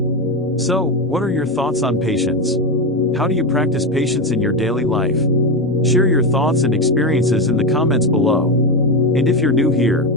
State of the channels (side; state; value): both; normal; correlation 0.13